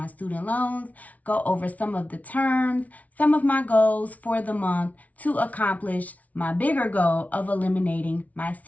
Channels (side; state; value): right; late; 0.071 ms